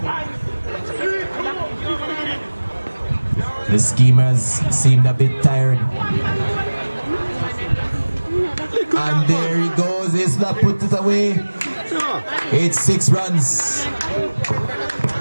The schemers seemed a bit tired. And there he goes. Isla put it away. It's 6 runs.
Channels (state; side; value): inverted; both; correlation -1.00